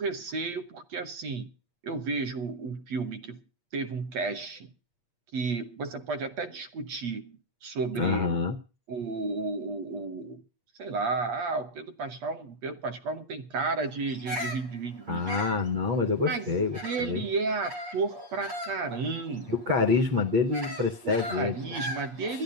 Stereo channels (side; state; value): left; late; 8.4 ms